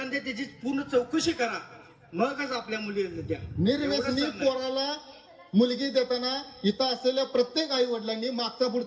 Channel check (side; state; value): both; identical; correlation 1.00